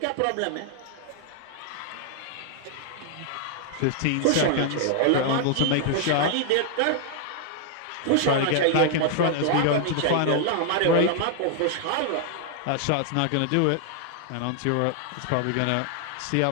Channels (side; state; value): both; different; correlation 0.00